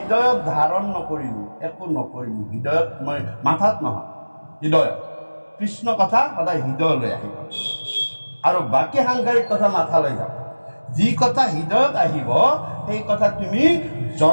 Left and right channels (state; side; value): inverted; both; correlation -1.00